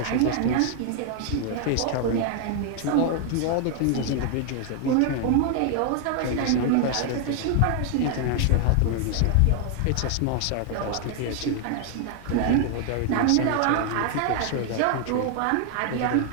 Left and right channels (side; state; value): both; different; correlation 0.00